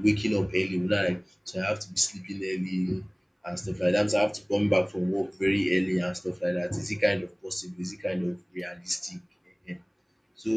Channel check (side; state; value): both; identical; correlation 1.00